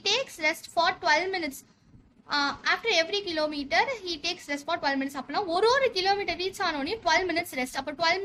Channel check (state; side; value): identical; both; correlation 1.00